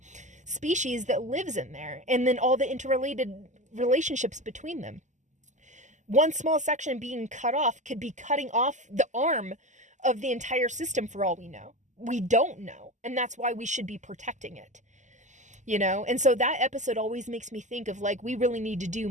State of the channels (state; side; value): late; left; 0.34 ms